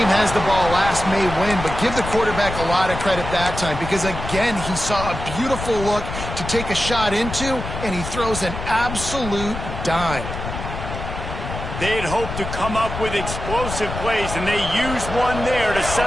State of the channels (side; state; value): left; noise; rumble, 7 dB below the sound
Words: has the ball last may win, but give the quarterback a lot of credit that time because, again, he saw a beautiful look to take a shot into, and he throws an absolute dime. They'd hoped to come up with explosive plays, and they used one there to